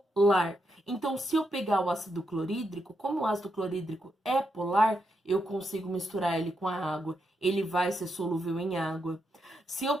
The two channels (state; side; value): normal; both; correlation 0.82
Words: Então, se eu pegar o ácido clorídrico, como o ácido clorídrico é polar, eu consigo misturar ele com a água. Ele vai ser solúvel em água. Se eu